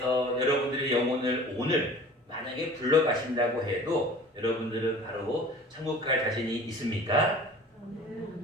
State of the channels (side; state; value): both; normal; correlation 0.44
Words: 여러분들의 영혼을 오늘 만약에 불러가신다고 해도 여러분들은 바로 천국 갈 자신이 있습니까?